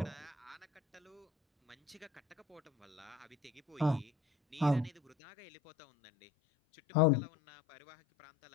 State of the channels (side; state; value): right; drops out; at 5.2 s